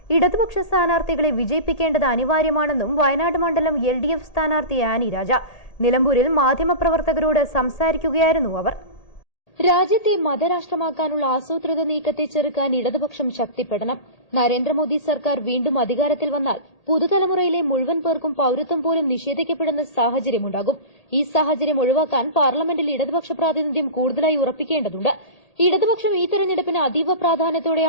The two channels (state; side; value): late; right; 1.8 ms